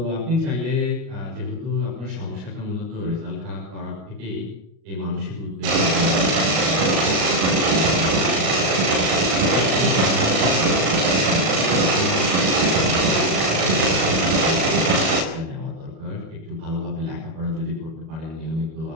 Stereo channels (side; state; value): left; late; 37 ms